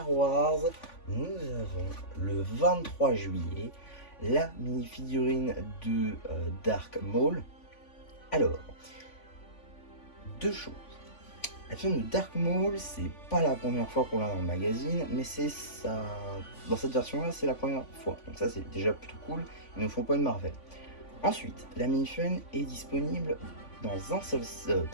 Wars? Nous avons le 23 juillet la mini-figurine de Dark Maul. Alors, deux choses. La figurine de Dark Maul, c'est pas la première fois qu'on l'a dans le magazine, mais c'est ça. Dans cette version-là, c'est la première fois. Donc ça, c'est déjà plutôt cool. Ils ne font pas une Marvel. Ensuite, la mini-figurine est disponible dans un seul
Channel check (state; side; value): late; right; 3.5 ms